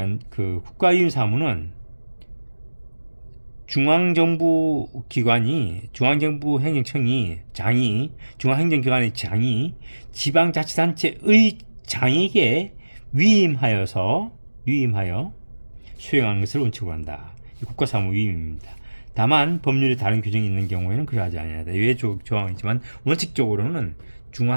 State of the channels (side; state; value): both; inverted; correlation -1.00